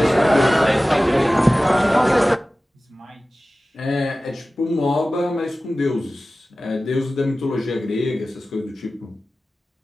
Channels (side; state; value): both; normal; correlation 0.96